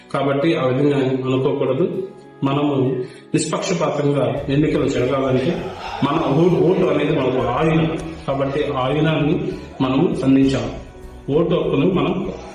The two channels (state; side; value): identical; both; correlation 1.00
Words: కాబట్టి ఆ విధంగా అనుకోకూడదు. మనము నిష్పక్షపాతంగా ఎన్నికలు జరగాలంటే మన ఓటు అనేది మనకు ఆయుధం. కాబట్టి ఆ ఆయుధాన్ని మనము అందించాలి. ఓటు హక్కును మనం